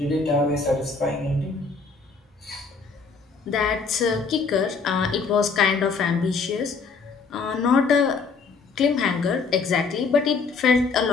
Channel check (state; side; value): quieter; right; 4.8 dB